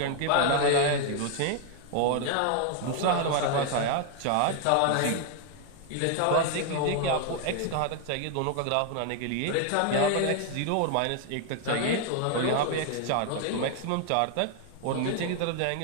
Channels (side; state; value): both; different; correlation 0.00